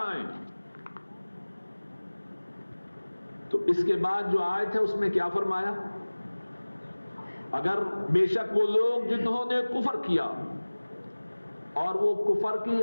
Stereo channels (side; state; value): both; inverted; correlation -1.00